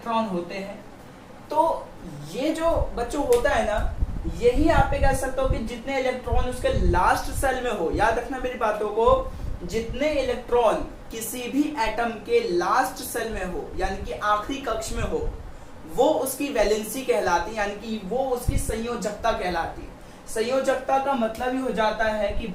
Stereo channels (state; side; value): identical; both; correlation 1.00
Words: होते हैं। तो ये जो बच्चों होता है ना, यही आप कह सकते हो कि जितने इलेक्ट्रॉन उसके लास्ट सेल में हो, याद रखना मेरी बातों को, जितने इलेक्ट्रॉन किसी भी एटम के लास्ट सेल में हो यानी कि आखिरी कक्ष में हो, वो उसकी वैलेंसी कहलाती है, यानी कि वो उसकी संयोजकता कहलाती है। संयोजकता का मतलब ही हो जाता है कि